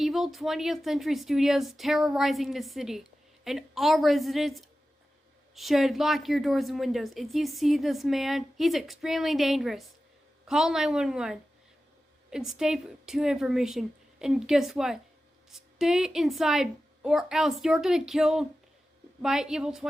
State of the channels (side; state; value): both; normal; correlation 0.94